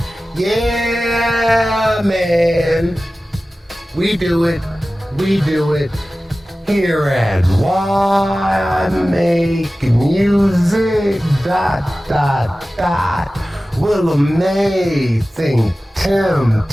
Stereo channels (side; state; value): both; normal; correlation 0.96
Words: Yeah, man, we do it here at Why Make Music, ... Willa May, ThinkTimm,